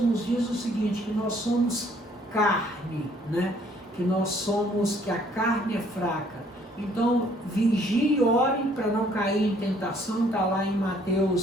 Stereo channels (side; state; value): both; normal; correlation 0.62